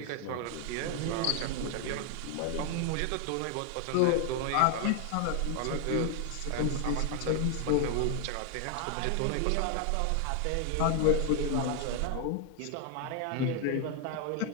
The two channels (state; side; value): different; both; correlation 0.00